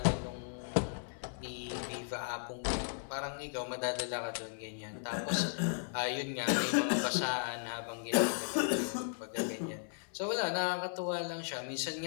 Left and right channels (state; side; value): silent; right; 54 dB below the other